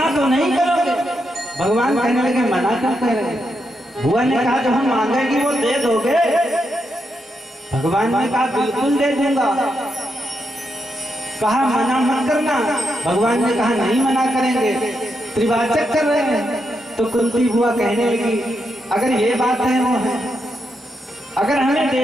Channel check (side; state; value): both; normal; correlation 0.83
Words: तो नहीं करोगे। भगवान कहने लगे मना क्यों कह रहे? बुआ ने कहा जो हम मांगेगी वो दे दोगे? भगवान ने कहा बिल्कुल दे दूंगा। कहा मना मत करना। भगवान ने कहा नहीं मना करेंगे। त्रिवाचक कर रहे हैं। तो कुंती बुआ कहने लगी अगर ये बात है वो है, अगर हमें